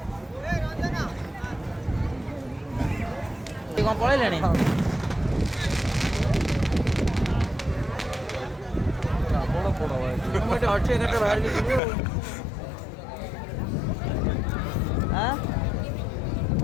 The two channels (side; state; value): right; drops out; at 11.8 s